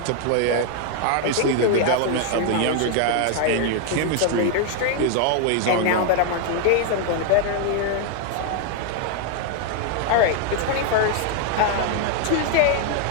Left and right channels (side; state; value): both; different; correlation 0.00